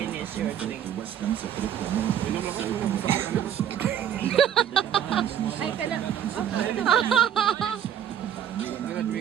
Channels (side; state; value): left; quieter; 9.7 dB